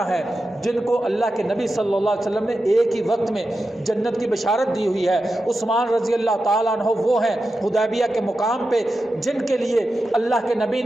ہیں، جن کو اللہ کے نبی صلی اللہ علیہ وسلم نے ایک ہی وقت میں جنت کی بشارت دی ہوئی ہے، عثمان رضی اللہ تعالیٰ عنہ وہ ہیں حدیبیہ کے مقام پہ جن کے لیے اللہ کے نبی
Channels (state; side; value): normal; both; correlation 0.91